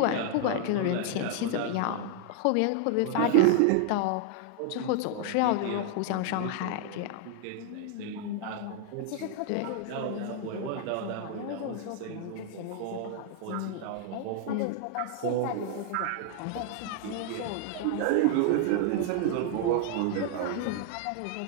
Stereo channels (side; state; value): both; different; correlation 0.00